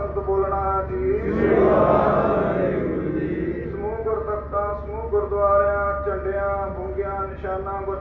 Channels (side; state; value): both; identical; correlation 1.00